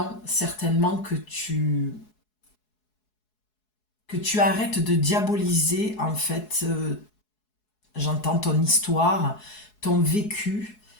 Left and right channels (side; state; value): right; late; 4.7 ms